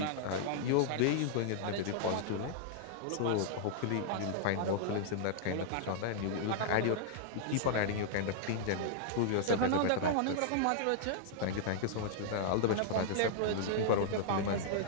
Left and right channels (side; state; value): both; different; correlation -0.01